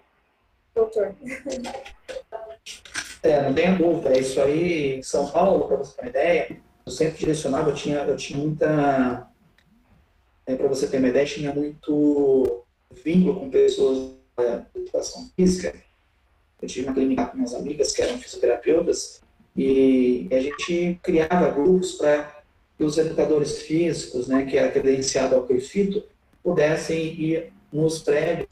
Doutor. Não tenha dúvida. Isso aí, em São Paulo, para você ter uma ideia, eu sempre direcionava, eu tinha muita... para você ter uma ideia, tinha muito vínculo com pessoas de educação física. Eu tive uma clínica com minhas amigas que eram fisioterapeutas e a gente criava grupos para que os educadores físicos, né, que era credenciado ao CREFITO, pudessem ir nos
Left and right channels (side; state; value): both; identical; correlation 1.00